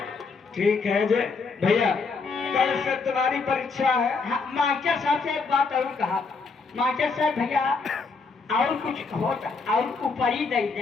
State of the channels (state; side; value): quieter; right; 4.5 dB